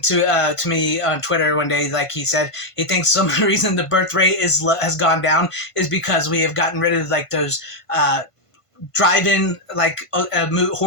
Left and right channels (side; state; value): right; late; 1.5 ms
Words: to me on Twitter one day, like he said, he thinks some of the reason the birth rate has gone down is because we have gotten rid of like those drive-in